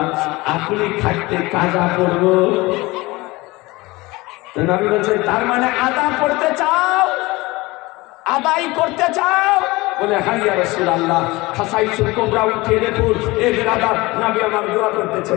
আপনি থাকতে কাজা পড়ব। তো নবী বলছেন, তার মানে আদা পড়তে চাও, আদায় করতে চাও? বলে, হ্যাঁ ইয়া রাসূলুল্লাহ। খাসাইসুল কুবরা উঠে দেখুন, এ বেরাদার নবী আমার দোয়া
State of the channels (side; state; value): right; quieter; 21.7 dB